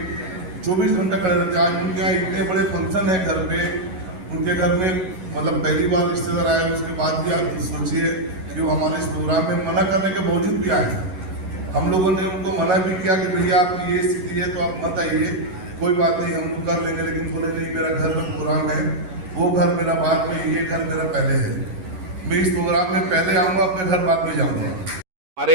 24 घंटा खड़े रहते हैं। आज उनके यहाँ इतने बड़े फंक्शन है घर पे, उनके घर में मतलब पहली बार रिश्तेदार आए, उसके बाद भी आप सोचिए कि वो हमारे इस प्रोग्राम में मना करने के बावजूद भी आए। हम लोगों ने उनको मना भी किया कि भैया आपकी ये स्थिति है तो आप मत आइए, कोई बात नहीं हम लोग कर लेंगे। लेकिन बोले नहीं, मेरा घर में प्रोग्राम है, वो घर मेरा बाद में, ये घर मेरा पहले है। मैं इस प्रोग्राम में पहले आऊँगा, अपने घर बाद में जाऊँगा।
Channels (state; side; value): late; left; 11 ms